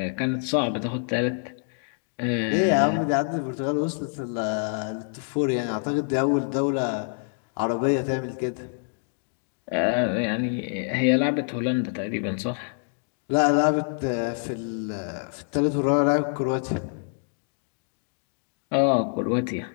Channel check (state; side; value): silent; right; 61 dB below the other